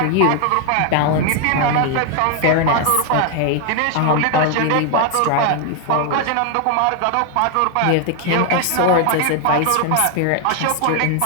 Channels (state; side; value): different; both; correlation 0.00